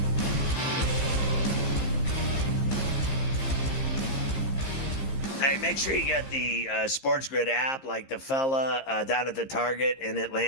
Hey, make sure you get the SportsGrid app, like the fella down at the Target in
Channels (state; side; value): late; right; 15 ms